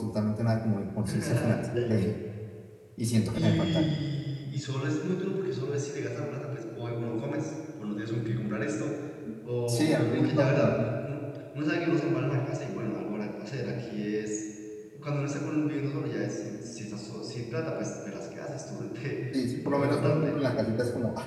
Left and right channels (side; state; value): both; identical; correlation 1.00